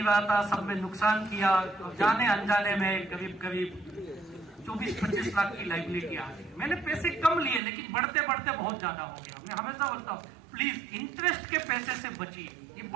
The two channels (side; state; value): left; drops out; at 7.6 s